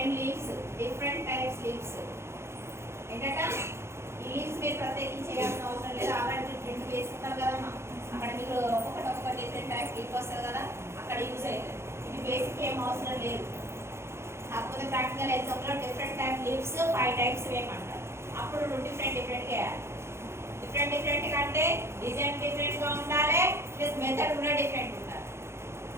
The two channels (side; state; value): left; late; 0.13 ms